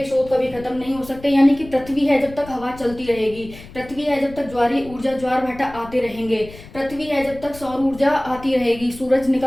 स्रोत कभी खत्म नहीं हो सकते, यानी कि पृथ्वी है जब तक हवा चलती रहेगी, पृथ्वी है जब तक ज्वारीय ऊर्जा, ज्वार भाटा आते रहेंगे, पृथ्वी है जब तक सौर ऊर्जा आती रहेगी, सूरज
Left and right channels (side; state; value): left; noise; rumble, 17 dB below the sound